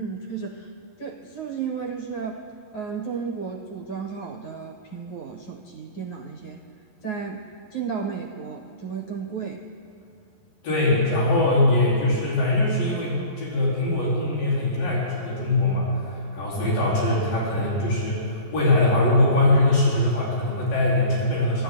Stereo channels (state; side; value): late; right; 11 ms